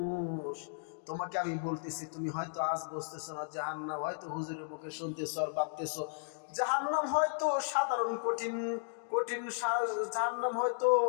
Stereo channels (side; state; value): right; silent; digital silence